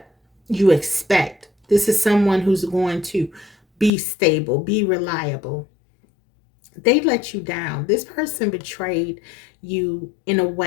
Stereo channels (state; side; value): drops out; right; at 3.9 s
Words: you expect. This is someone who's going to be stable, be reliable. They let you down. This person betrayed you in a